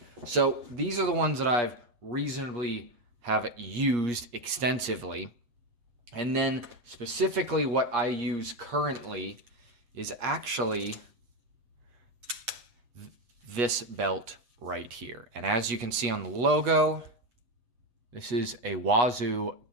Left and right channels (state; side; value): late; left; 8.4 ms